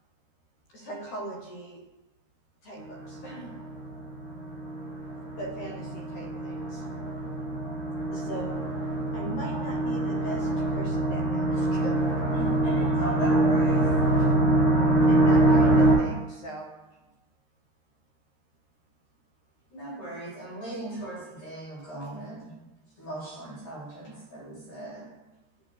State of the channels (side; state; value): right; late; 13 ms